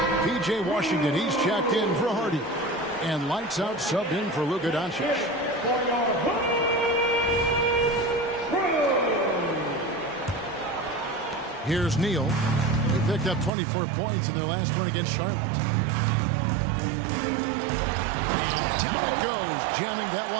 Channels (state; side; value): drops out; left; at 13.5 s